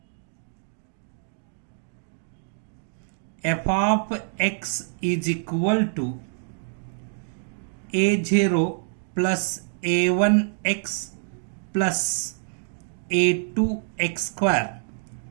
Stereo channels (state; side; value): silent; left; digital silence